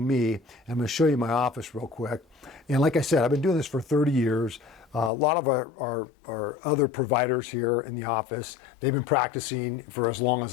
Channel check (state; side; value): drops out; right; at 5.1 s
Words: me, I'm going to show you my office real quick. And like I said, I've been doing this for 30 years. A lot of our other providers here in the office, they've been practicing for as long as